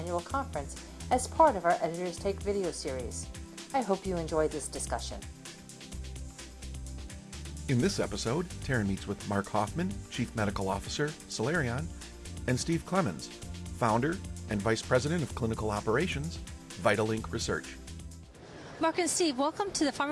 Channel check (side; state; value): both; identical; correlation 1.00